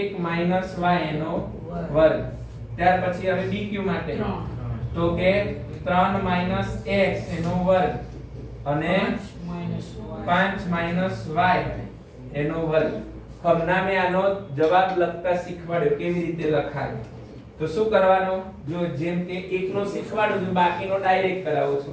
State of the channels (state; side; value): identical; both; correlation 1.00